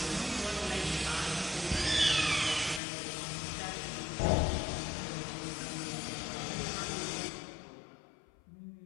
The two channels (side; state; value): right; drops out; at 2.8 s